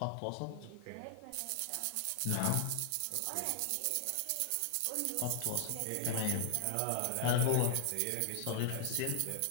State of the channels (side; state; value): both; different; correlation 0.00